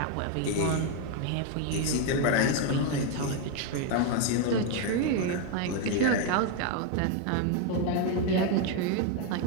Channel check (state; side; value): different; both; correlation 0.01